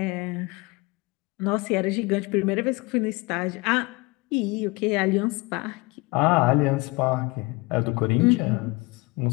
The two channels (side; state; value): right; quieter; 25.0 dB